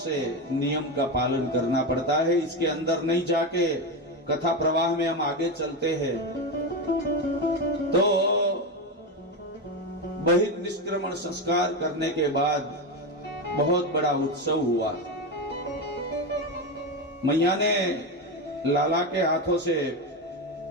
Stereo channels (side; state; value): both; normal; correlation 0.14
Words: नियम का पालन करना पड़ता है। इसके अंदर नहीं जाके कथा प्रवाह में हम आगे चलते हैं तो बहिर्निष्क्रमण संस्कार करने के बाद बहुत बड़ा उत्सव हुआ। मैया ने लाला के हाथों से